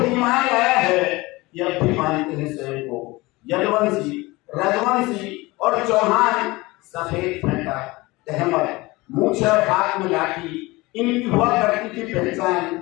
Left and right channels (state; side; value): quieter; right; 21.9 dB